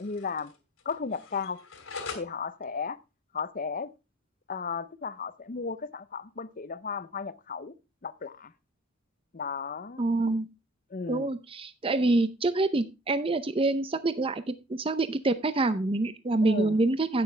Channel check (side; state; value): both; normal; correlation 0.51